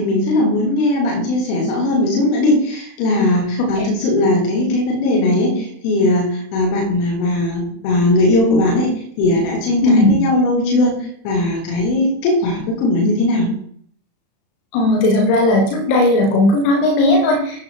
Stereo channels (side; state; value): right; late; 35 ms